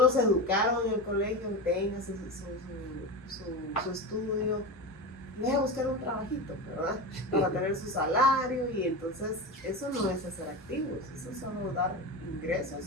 educaron en el colegio, tenga su estudio, vaya a buscar un trabajito, ¿verdad? Para tener su salario, y entonces eso no es hacer activos, eso es solo dar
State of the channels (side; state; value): both; normal; correlation 0.23